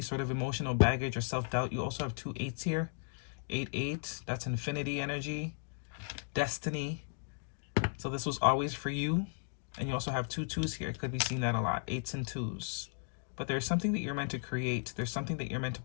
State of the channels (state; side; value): silent; right; digital silence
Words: sort of emotional baggage or self-doubt. You also have two eights here. 8-8, that's infinity energy, destiny. So this was always for you. And you also have two twos here. Could be seeing that a lot, 8s and 2s. But there's something that you're meant to create. There's something that you're meant to